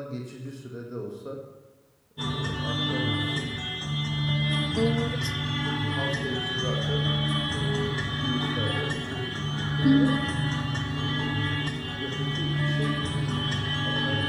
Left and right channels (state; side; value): identical; both; correlation 1.00